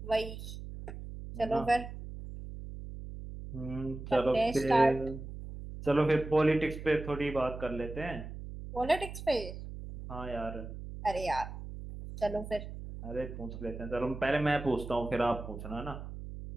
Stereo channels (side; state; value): right; noise; hum, 10 dB below the sound